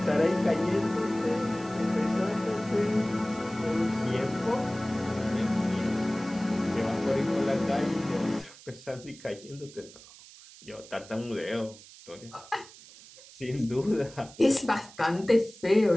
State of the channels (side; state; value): right; noise; hiss, 20 dB below the sound